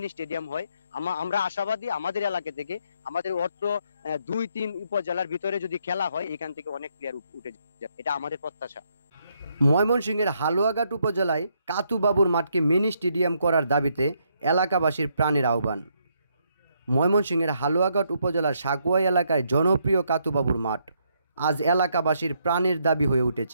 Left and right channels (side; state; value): both; inverted; correlation -0.74